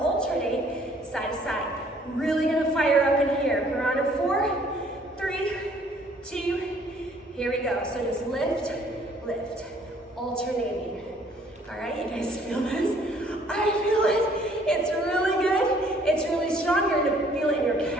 alternate side to side. Really gonna fire up in here. We're on a 4, 3, 2, here we go. So just lift, lift, alternating. All right, you guys feel this? I feel it. It's really good. It's really strong. You're gonna feel it in your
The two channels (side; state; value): both; normal; correlation 0.60